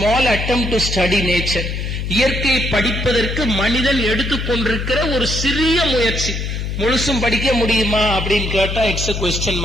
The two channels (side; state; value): left; noise; hum, 3 dB below the sound